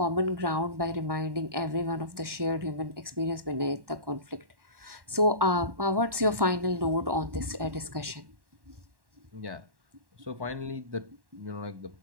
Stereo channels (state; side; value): late; left; 1.1 ms